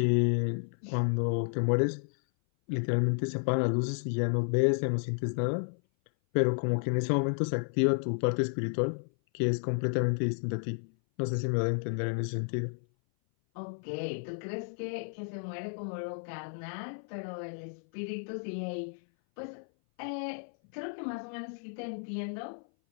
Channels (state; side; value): silent; right; 57 dB below the other